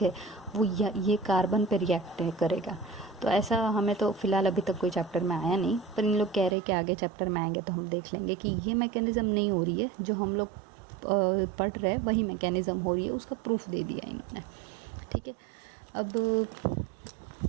है वो ये कार्बन पे रिएक्ट करेगा। तो ऐसा हमें तो फ़िलहाल अभी तक कोई चैप्टर में आया नहीं, पर इन लोग कह रहे हैं कि आगे चैप्टर में आएंगे तो हम देख लेंगे कि ये मैकेनिज़्म नहीं हो रही है, जो हम लोग पढ़ रहे हैं वही मैकेनिज़्म हो रही है, उसका प्रूफ दे दिया इन्होंने। ठीक है, अब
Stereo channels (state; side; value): drops out; left; at 6.6 s